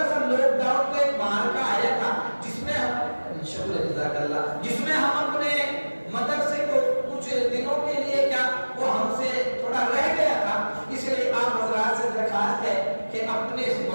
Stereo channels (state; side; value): inverted; both; correlation -1.00